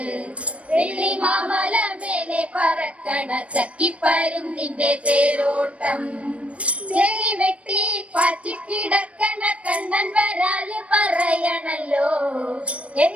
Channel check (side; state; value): left; late; 0.063 ms